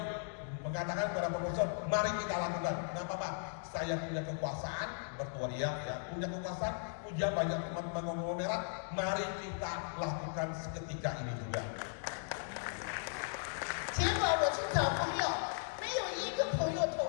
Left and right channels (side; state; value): right; silent; digital silence